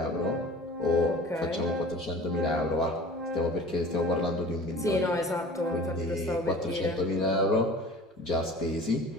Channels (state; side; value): normal; both; correlation 0.43